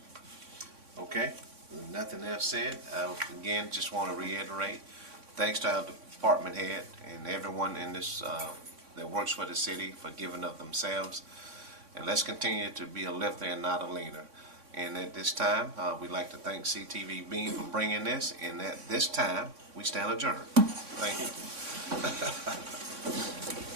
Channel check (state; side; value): late; left; 3.6 ms